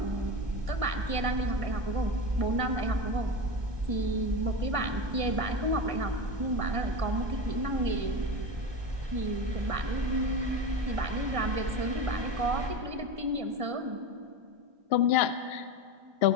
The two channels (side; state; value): left; late; 1.5 ms